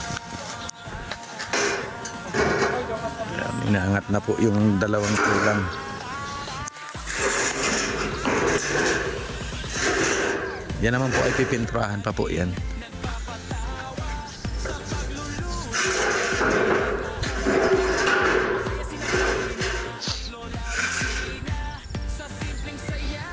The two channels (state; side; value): identical; both; correlation 1.00